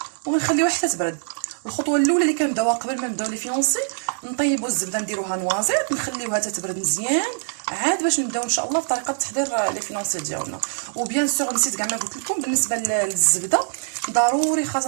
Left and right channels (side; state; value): left; silent; digital silence